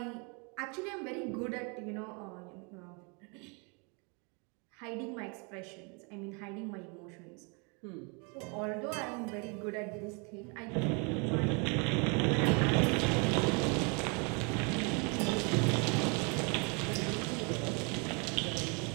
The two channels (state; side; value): quieter; left; 33.6 dB